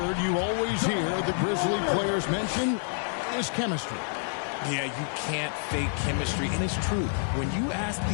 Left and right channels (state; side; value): silent; right; 59 dB below the other